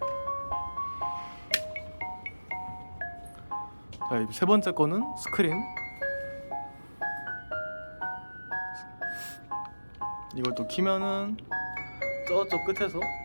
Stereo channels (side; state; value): both; inverted; correlation -1.00